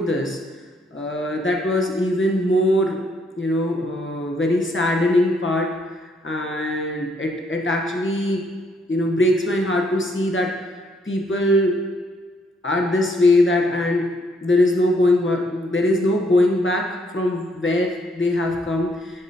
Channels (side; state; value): both; normal; correlation 0.70